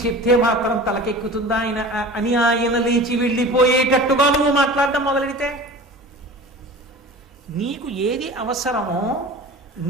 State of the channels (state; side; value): normal; both; correlation 0.38